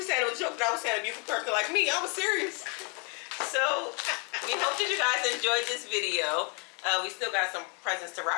said it was a joke, but I was saying a beautiful person like me. I was serious. So we hope that you guys enjoyed this video. We still got some presents to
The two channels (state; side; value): quieter; right; 34.8 dB